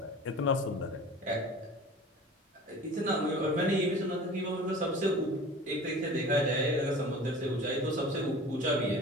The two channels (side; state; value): both; normal; correlation 0.40